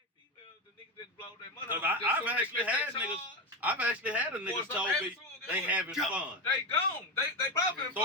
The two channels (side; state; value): both; normal; correlation 0.16